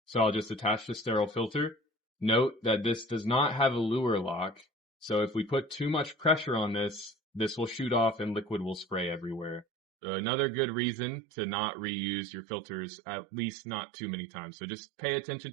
So I'll just attach the sterile filter. Note that this does not have a lure lock. So if we put too much pressure on this, this will shoot off and liquid will spray everywhere. So another good reason to not reuse your filters, at least not too many times. So just pay attention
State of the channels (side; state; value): left; drops out; at 9.7 s